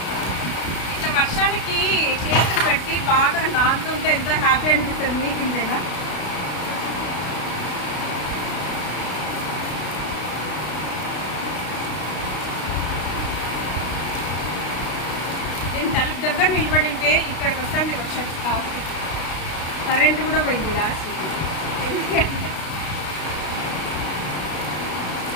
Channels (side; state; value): right; late; 32 ms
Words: ఇట్లా వర్షానికి చేతులు పెట్టి బాగా నానుతుంటే ఎంత హ్యాపీ అనిపిస్తుంది. మీకు ఇంతేనా? నేను తలుపు దగ్గర నిలబడి ఉంటే ఇక్కడికి వస్తుంది వర్షం. లాస్ట్ కరెంటు కూడా పోయింది లాస్ట్. ఎందుకంటే